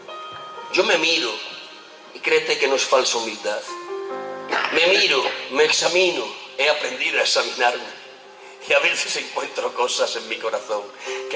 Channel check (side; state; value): both; identical; correlation 1.00